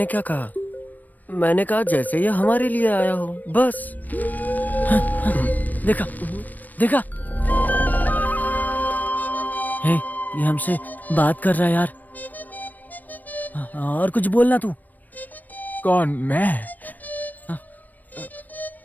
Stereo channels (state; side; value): late; right; 0.084 ms